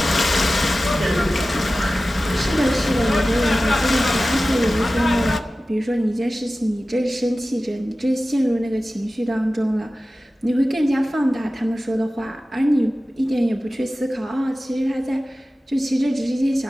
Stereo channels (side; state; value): both; normal; correlation 0.96